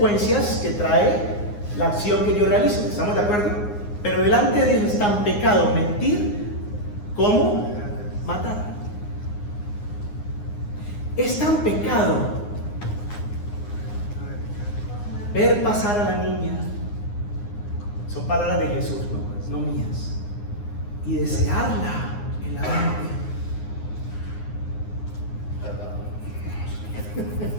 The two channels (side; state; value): right; late; 9.7 ms